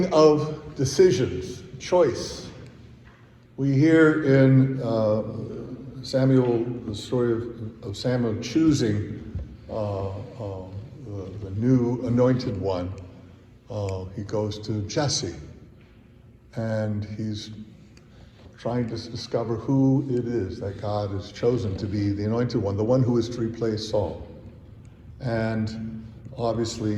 of decisions, choice. We hear in Samuel, the story of Samuel choosing the new anointed one. He goes to Jesse, and he's trying to discover who it is that God has chosen to be the anointed one, the one who is to replace Saul. And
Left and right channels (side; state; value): both; identical; correlation 1.00